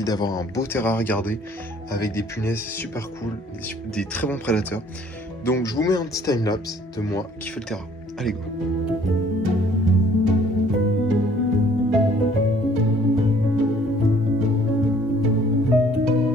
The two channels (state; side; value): normal; both; correlation 0.58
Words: d'avoir un beau terrain à regarder, avec des punaises super cool, des très bons prédateurs. Donc je vous mets un petit timelapse de moi qui fait le terrain. Allez go!